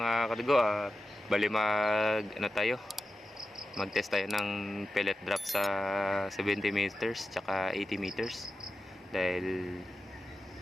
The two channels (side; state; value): both; normal; correlation 0.91